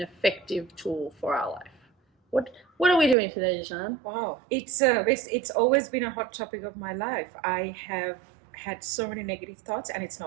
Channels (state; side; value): drops out; left; at 3.2 s